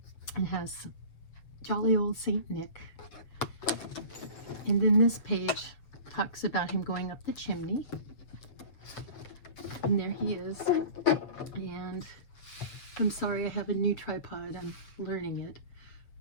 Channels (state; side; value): late; right; 7.8 ms